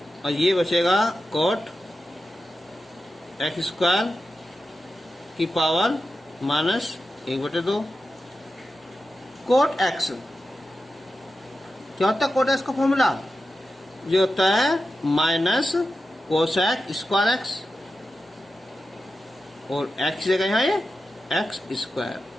और ये बचेगा कॉट एक्स स्क्वायर की पावर -1/2। कॉट एक्स क्या होता है, कॉट एक्स का फॉर्मूला जो होता है माइनस कोसेक स्क्वायर एक्स, और एक्स जगह यहाँ ये एक्स स्क्वायर।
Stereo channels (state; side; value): normal; both; correlation 0.91